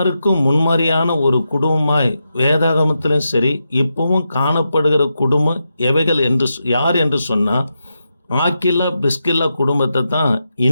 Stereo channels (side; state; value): both; inverted; correlation -0.87